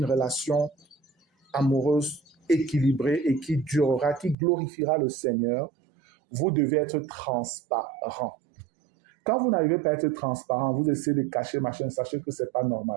relation amoureuse équilibrée et qui durera, qui glorifiera le Seigneur, vous devez être transparent. Quand vous n'arrivez pas à être transparent, vous essayez de cacher, machin, sachez que ce n'est pas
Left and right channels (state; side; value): drops out; left; at 4.4 s